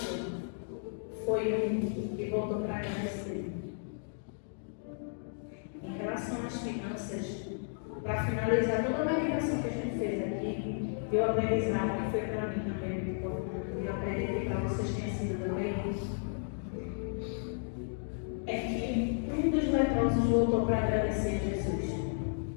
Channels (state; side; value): silent; right; digital silence